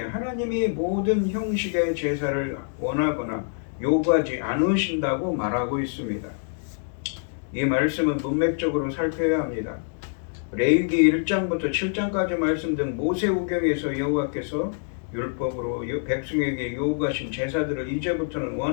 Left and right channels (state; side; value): silent; right; digital silence